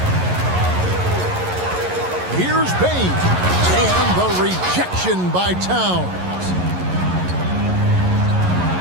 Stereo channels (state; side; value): late; left; 11 ms